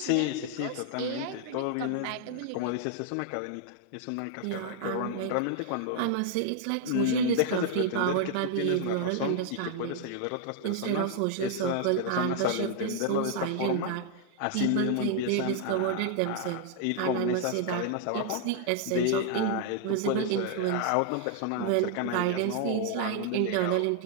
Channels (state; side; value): different; both; correlation 0.00